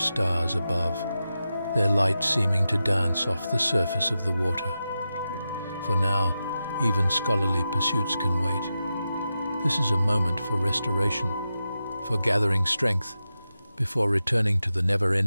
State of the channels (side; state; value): both; inverted; correlation -0.90